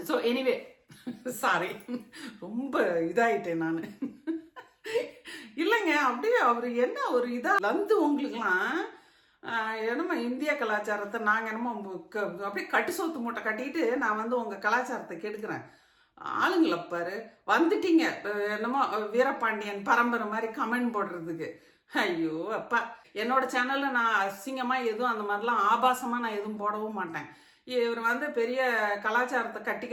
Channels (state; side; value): identical; both; correlation 1.00